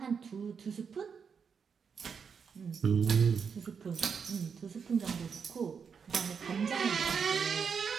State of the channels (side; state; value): left; quieter; 6.3 dB